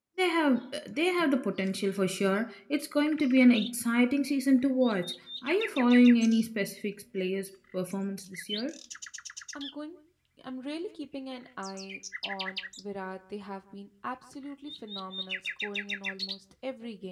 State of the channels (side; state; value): both; identical; correlation 1.00